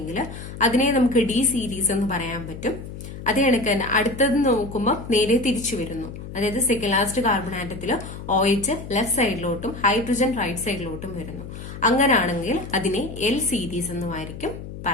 അതിനെ നമുക്ക് ഡി സീരീസ് എന്ന് പറയാൻ പറ്റും. അതേ കണക്ക് തന്നെ അടുത്തത് നോക്കുമ്പോൾ നേരെ തിരിച്ചു വരുന്നു. അതായത് സെക്കൻഡ് ലാസ്റ്റ് കാർബൺ ആറ്റത്തിൽ OH ലെഫ്റ്റ് സൈഡിലോട്ടും ഹൈഡ്രജൻ റൈറ്റ് സൈഡിലോട്ടും വരുന്നു. അങ്ങനാണെങ്കിൽ അതിനെ എൽ സീരീസ് എന്നുമായിരിക്കും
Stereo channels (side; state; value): left; noise; hum, 11 dB below the sound